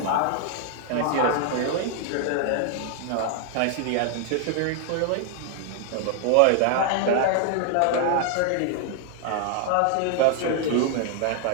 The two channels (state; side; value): different; both; correlation 0.00